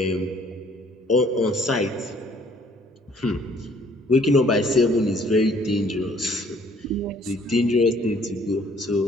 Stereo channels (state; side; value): normal; both; correlation 0.60